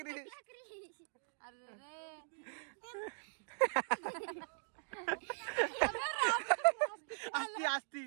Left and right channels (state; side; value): silent; left; digital silence